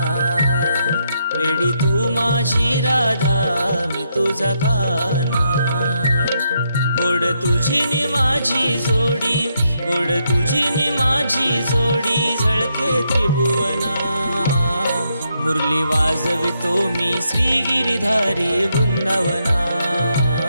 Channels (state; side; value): inverted; both; correlation -0.78